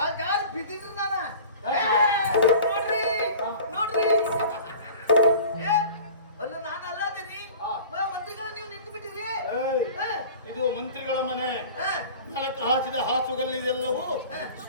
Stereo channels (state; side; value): inverted; both; correlation -0.41